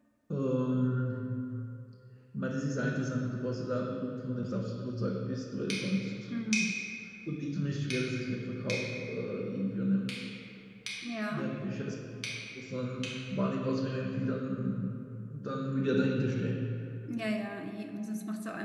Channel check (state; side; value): identical; both; correlation 1.00